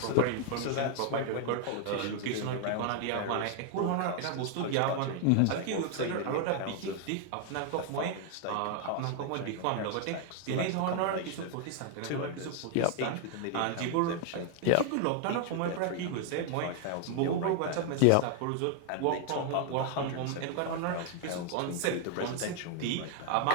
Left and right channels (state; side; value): different; both; correlation 0.00